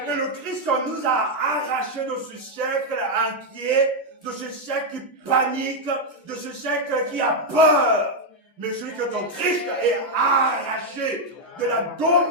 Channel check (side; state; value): both; normal; correlation 0.01